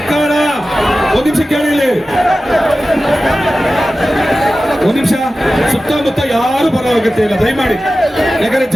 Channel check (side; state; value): both; normal; correlation 0.95